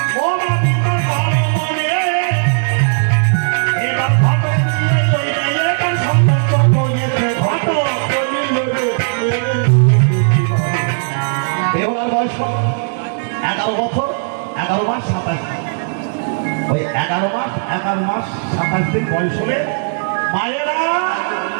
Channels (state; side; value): silent; left; digital silence